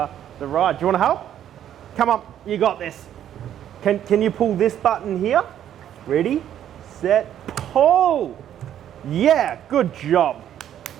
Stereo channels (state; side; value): quieter; left; 10.6 dB